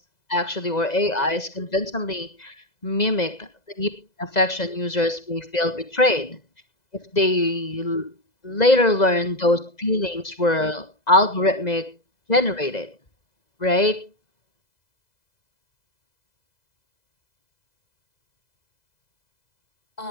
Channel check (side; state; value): right; late; 2.0 ms